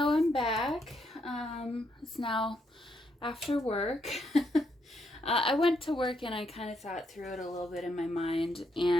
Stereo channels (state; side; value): normal; both; correlation 0.77